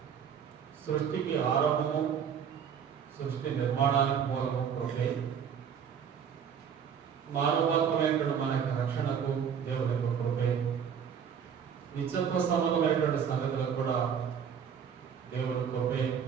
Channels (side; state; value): left; quieter; 7.7 dB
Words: సృష్టికి ఆరంభము, సృష్టి నిర్మాణానికి మూలము కృపే. మానవాత్మైనటువంటి మన యొక్క రక్షణకు దేవుడి యొక్క కృపే. నిత్యత్వ సంబంధమైనటువంటి సంగతులకు కూడా దేవుడి కృపే